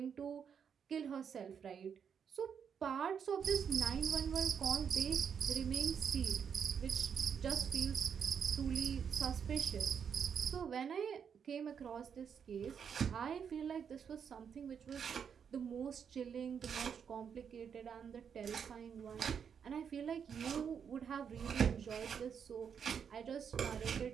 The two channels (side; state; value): left; quieter; 7.3 dB